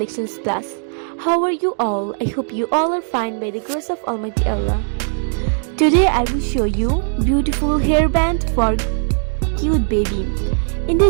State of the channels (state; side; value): silent; left; 64 dB below the other